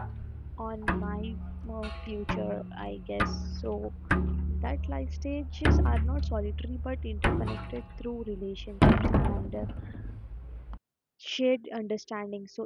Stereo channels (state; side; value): identical; both; correlation 1.00